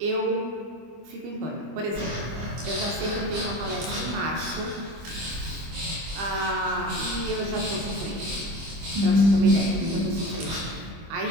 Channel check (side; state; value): left; late; 25 ms